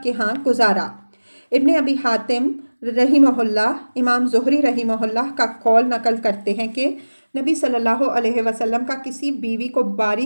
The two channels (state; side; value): inverted; both; correlation -1.00